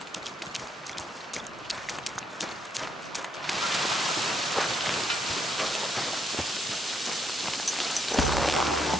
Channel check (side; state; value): both; normal; correlation 0.75